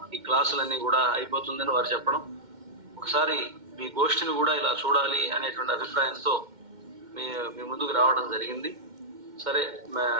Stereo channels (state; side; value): late; left; 2.1 ms